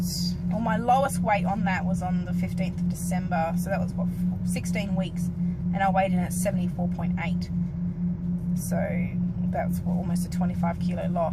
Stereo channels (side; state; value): both; identical; correlation 1.00